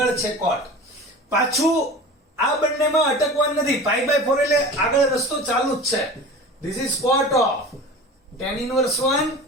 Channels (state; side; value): normal; both; correlation 0.36